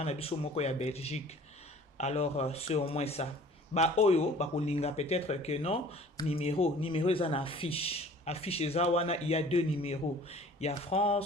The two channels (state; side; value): normal; both; correlation 0.49